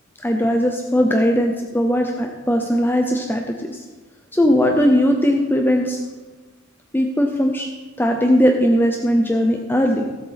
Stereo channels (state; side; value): normal; both; correlation 0.84